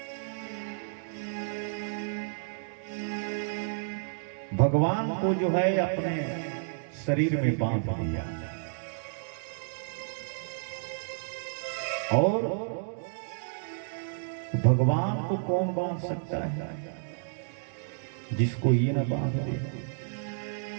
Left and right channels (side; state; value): left; silent; digital silence